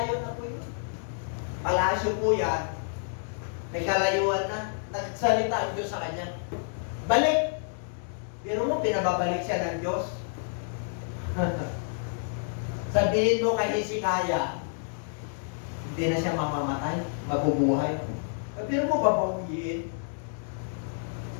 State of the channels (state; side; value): silent; right; 59 dB below the other